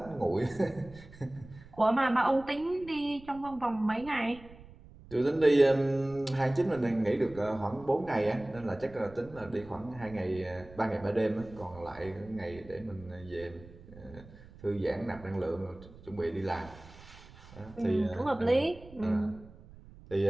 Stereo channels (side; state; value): right; noise; rumble, 20 dB below the sound